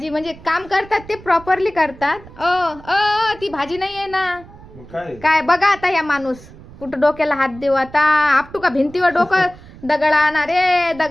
म्हणजे काम करतात ते प्रॉपरली करतात. ती भाजी नाही आहे ना. काय बघा आता या माणूस कुठं डोक्याला हात देऊ आता. आपटू का भिंतीवर डोकं. दगड आणा रे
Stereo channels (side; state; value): right; noise; rumble, 19 dB below the sound